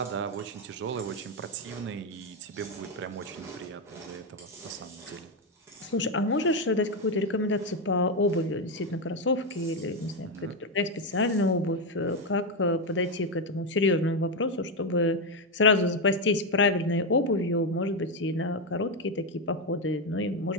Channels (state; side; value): normal; both; correlation 0.07